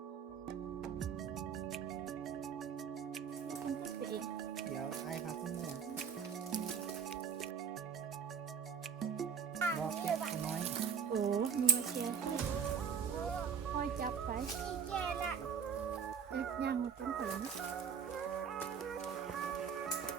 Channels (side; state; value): left; quieter; 7.0 dB